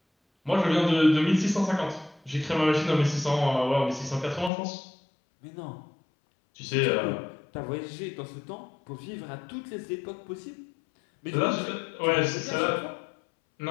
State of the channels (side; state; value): right; drops out; at 4.5 s